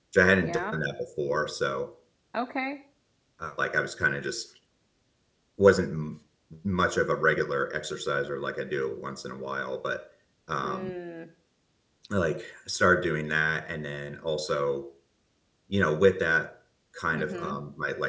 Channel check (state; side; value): identical; both; correlation 1.00